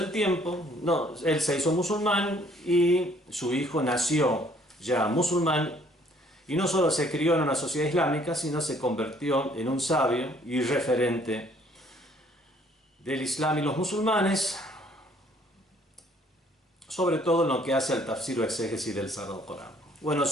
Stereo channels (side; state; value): both; normal; correlation 0.61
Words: tiempo, él se hizo musulmán y su hijo nació ya musulmán, y no solo se crió en una sociedad islámica, sino se convirtió en un sabio y referente del Islam y los musulmanes, sobre todo en lo que hace al tafsir o exégesis del Sagrado Corán. Bueno,